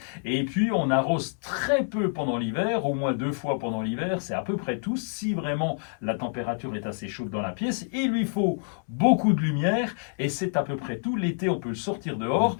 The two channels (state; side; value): silent; right; 60 dB below the other